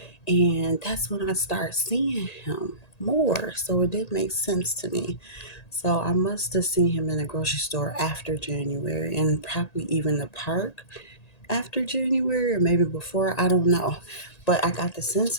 and that's when I started seeing him more. So it did make sense to me. So I must have seen him in the grocery store after January, and probably even the park after January, or maybe before. I don't know. But I got the sense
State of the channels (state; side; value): late; right; 1.8 ms